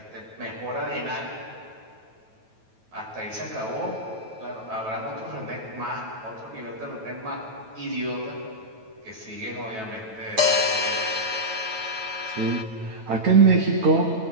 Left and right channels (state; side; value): late; left; 9.2 ms